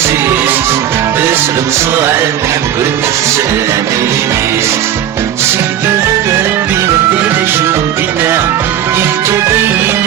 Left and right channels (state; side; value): quieter; left; 10.4 dB